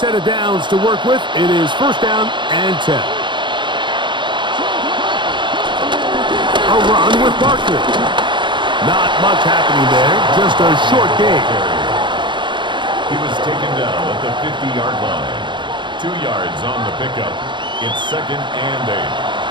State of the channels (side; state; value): left; late; 0.23 ms